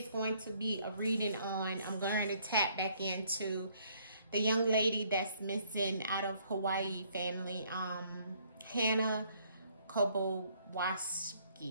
going to be a reading on. I'm going to tap back into the young lady that's missing out of Hawaii family, Hannah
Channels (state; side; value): inverted; both; correlation -0.65